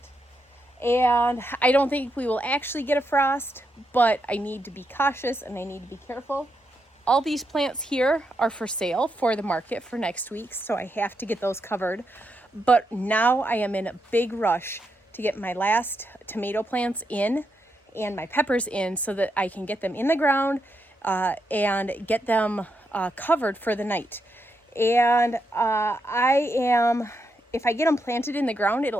And I don't think we will actually get a frost, but I need to be cautious and I need to be careful. All these plants here are for sale for the market for next week, so I have to get those covered. But now I am in a big rush to get my last tomato plants in and my peppers in so that I can get them in the ground and get them covered for the night. And if I get them planted in the ground,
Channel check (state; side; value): normal; both; correlation 0.82